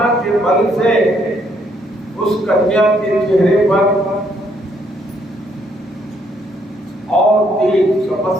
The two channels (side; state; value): both; normal; correlation 0.70